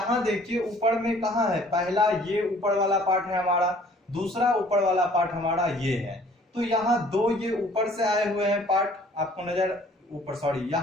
देखिए ऊपर में कहाँ है, पहला ये ऊपर वाला पार्ट है हमारा, दूसरा ऊपर वाला पार्ट हमारा ये है। तो यहाँ दो ये ऊपर से आए हुए हैं पार्ट, आपको नजर ऊपर, सॉरी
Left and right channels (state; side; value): normal; both; correlation 0.55